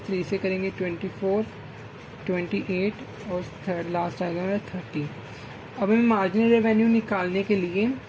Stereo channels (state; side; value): identical; both; correlation 1.00